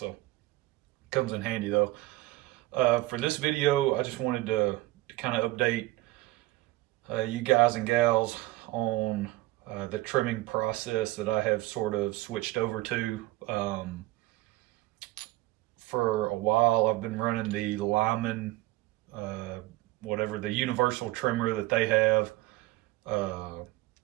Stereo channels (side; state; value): left; quieter; 18.9 dB